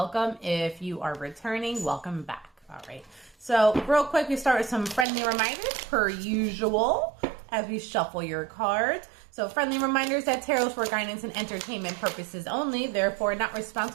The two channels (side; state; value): left; drops out; at 5.1 s